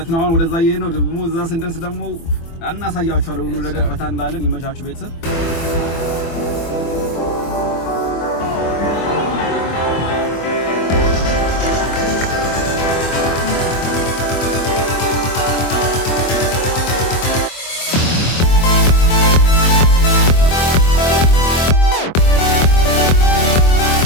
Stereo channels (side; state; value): right; late; 24 ms